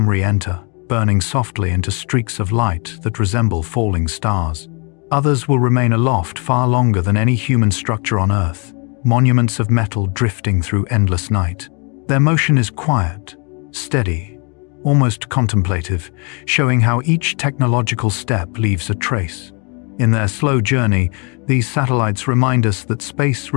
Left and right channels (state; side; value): quieter; right; 34.0 dB